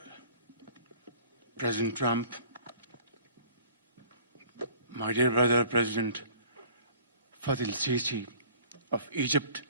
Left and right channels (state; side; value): inverted; both; correlation -0.50